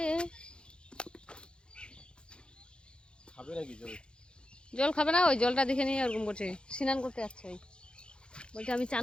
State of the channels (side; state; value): right; late; 0.053 ms